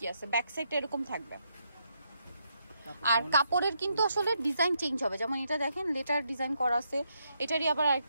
আছে? ব্যাক সাইডটা এরকম থাকবে, আর কাপড়ের কিন্তু আসলে ডিজাইন চেঞ্জ হবে। যেমন এটা দেখেন লেটার ডিজাইন করা আছে, এটারই আবার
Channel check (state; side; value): inverted; both; correlation -0.78